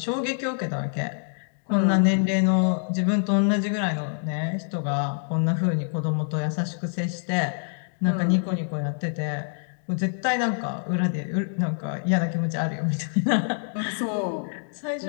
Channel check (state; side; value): silent; right; digital silence